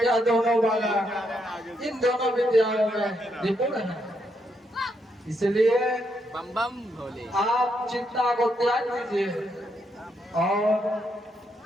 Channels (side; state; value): both; normal; correlation 0.78